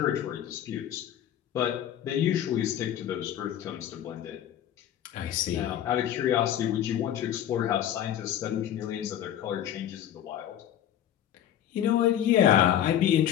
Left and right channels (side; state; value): right; quieter; 10.8 dB